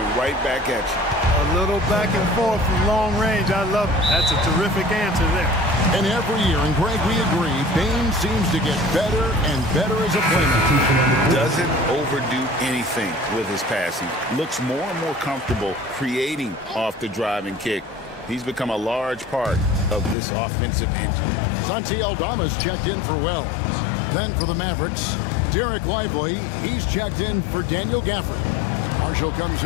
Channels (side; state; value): right; drops out; at 20.2 s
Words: right back at you. A little back and forth from long range. I love it. That's a terrific answer there. And every year, and Greg, we agree, Bane seems to get better and better as a playmaker. Doesn't overdo anything with his passing. Looks more and more comfortable creating off the drive and kick. He's become a large part of this offensive engine. Santi Aldama's checked in for Wells. Then for the Mavericks, Derek Lively, he's checked in for Daniel Gafford. Marshall comes